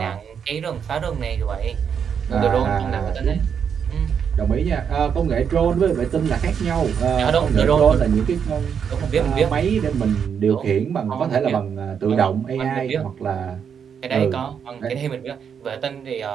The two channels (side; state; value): left; quieter; 7.3 dB